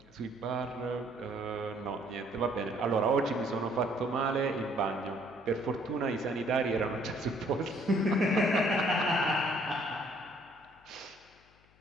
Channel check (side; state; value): left; noise; hum, 30 dB below the sound